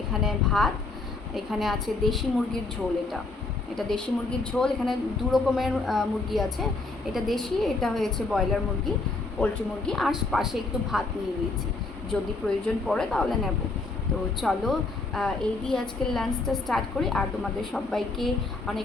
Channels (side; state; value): right; quieter; 3.4 dB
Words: এখানে ভাত। এখানে আছে দেশি মুরগির ঝোল। এটা দেশি মুরগির ঝোল। এখানে দু রকমের মুরগি আছে, এটা দেশি, এটা হয়েছে ব্রয়লার মুরগি, পোলট্রি মুরগি। আর পাশে একটু ভাত নিয়ে নিয়েছি, যদি প্রয়োজন পড়ে তাহলে নেব। তো চলো এই দিয়ে আজকের লাঞ্চটা স্টার্ট করি। আর তোমাদের সবাইকে